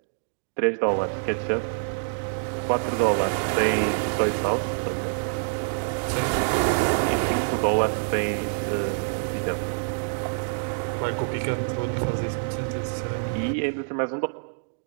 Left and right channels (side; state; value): left; silent; digital silence